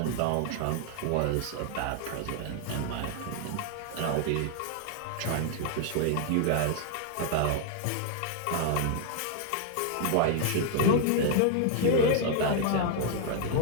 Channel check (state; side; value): different; both; correlation 0.00